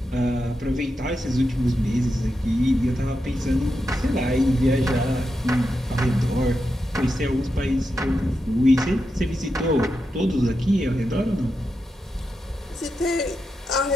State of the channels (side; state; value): both; normal; correlation 0.87